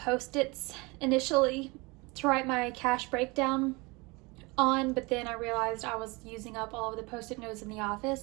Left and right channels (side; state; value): left; quieter; 25.9 dB